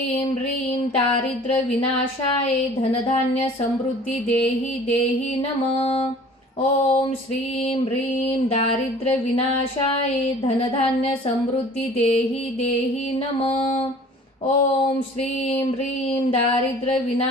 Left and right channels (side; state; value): both; normal; correlation 0.48